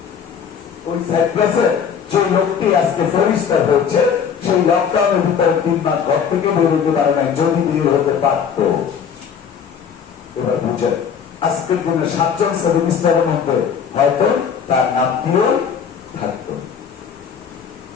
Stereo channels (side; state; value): right; quieter; 7.1 dB